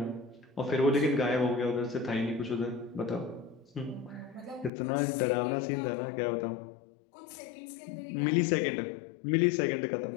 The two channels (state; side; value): drops out; right; at 4.7 s